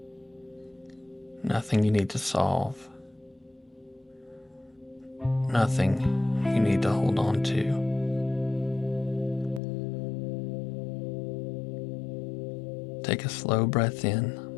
nothing you need to solve, nothing you need to hold on to. Take a slow breath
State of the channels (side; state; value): right; drops out; at 9.6 s